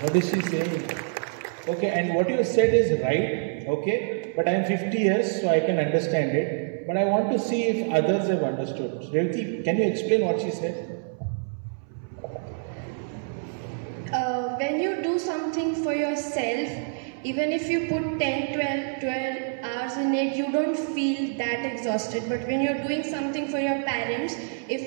Okay, and what you said is right. Okay, but I am 50 years, so I can understand it. But I want to see if others have understood. Revati, can you explain what she said? When you do something for yourself, even if you put 10, 12 hours in it, you don't feel that exhausted. But when you're doing something for your parents,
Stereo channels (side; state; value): left; silent; 61 dB below the other